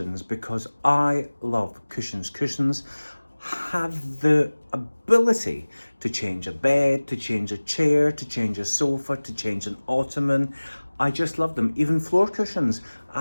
because I love cushions. Cushions have the ability to change a bed, to change a chair, to change a sofa, to change an ottoman. I just love them. Even floor cushions.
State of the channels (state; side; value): inverted; both; correlation -1.00